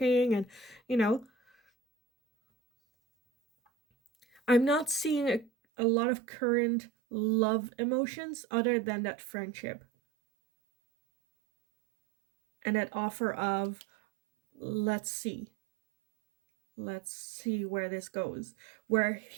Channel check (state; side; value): drops out; left; at 5.5 s